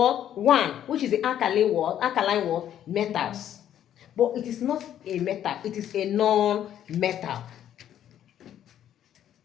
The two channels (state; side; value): quieter; right; 10.7 dB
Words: 1, which is the alkaline what? Alkaline what? Metals. But it is not a metal, it is a non-metal.